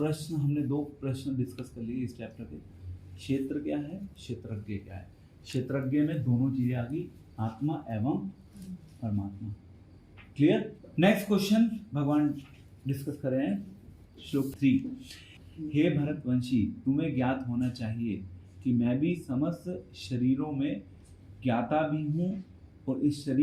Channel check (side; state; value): both; identical; correlation 1.00